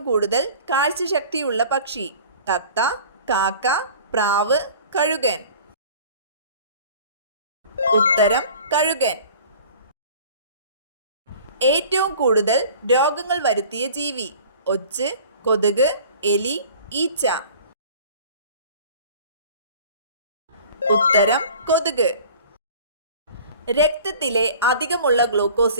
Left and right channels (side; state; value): both; inverted; correlation -0.45